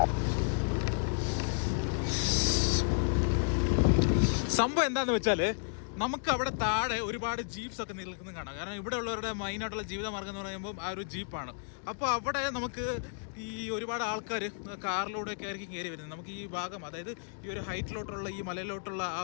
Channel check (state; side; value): silent; right; digital silence